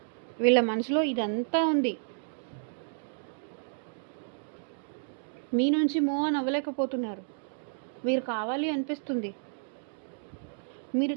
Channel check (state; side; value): silent; left; digital silence